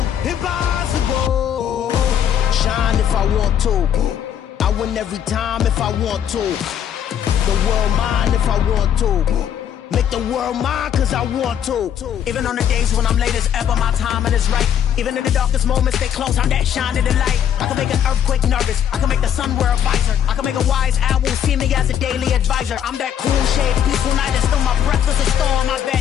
impossible. Shine if I want to. I win every time if I want to. The world mine if I want to. Make the world mine cause I want to. Even on the days when I'm late as ever, my timing is right. Even in the darkest moments, stay close, I'm that shining the light. I can make an earthquake nervous, I can make the sun wear a visor. I can make a wise owl see me as a daily advisor. I'm that cool shade, peaceful night, and still my breath is a storm, I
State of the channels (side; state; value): right; quieter; 9.3 dB